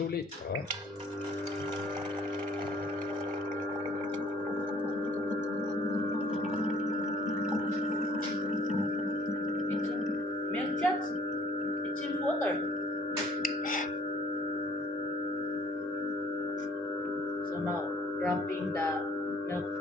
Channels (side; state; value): both; normal; correlation 0.57